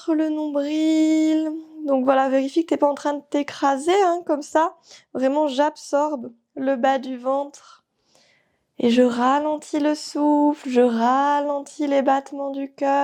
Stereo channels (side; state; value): both; identical; correlation 1.00